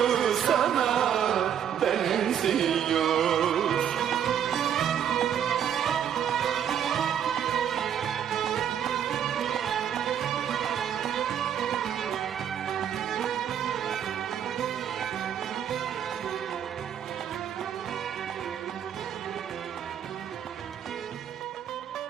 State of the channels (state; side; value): quieter; left; 9.1 dB